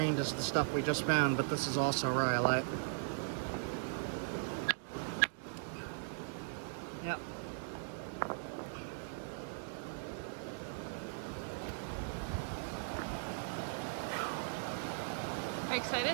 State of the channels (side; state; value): left; silent; digital silence